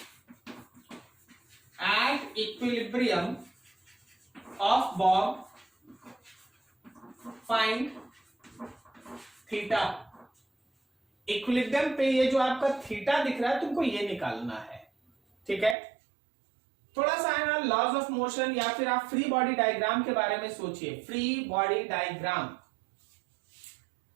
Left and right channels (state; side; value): drops out; left; at 15.8 s